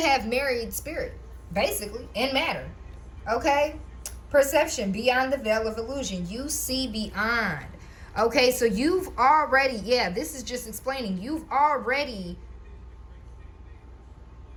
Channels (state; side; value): identical; both; correlation 1.00